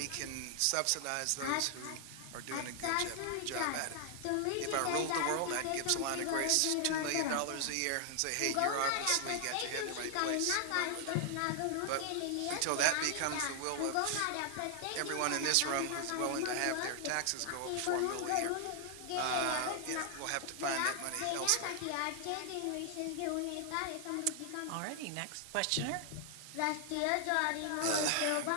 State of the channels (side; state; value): both; different; correlation 0.00